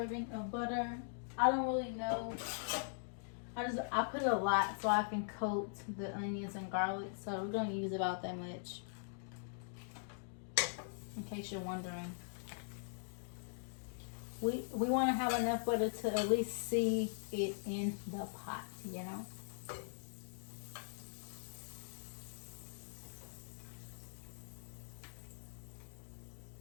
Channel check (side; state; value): right; silent; digital silence